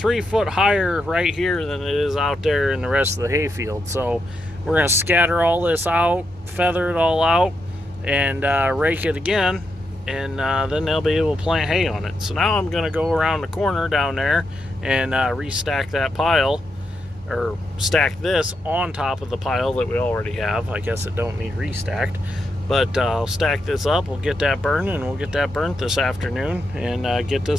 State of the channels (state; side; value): normal; both; correlation 0.83